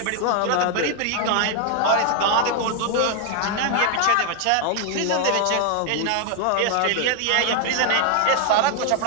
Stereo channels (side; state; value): both; different; correlation 0.00